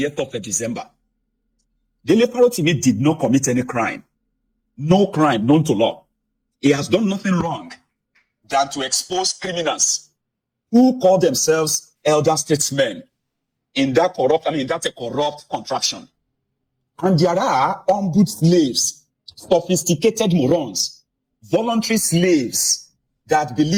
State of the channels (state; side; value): identical; both; correlation 1.00